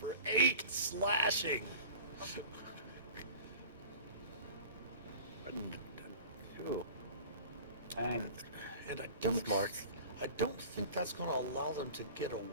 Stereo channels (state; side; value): inverted; both; correlation -0.40